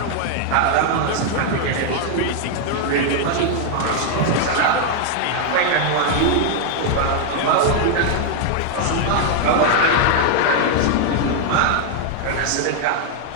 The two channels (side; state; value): both; different; correlation 0.00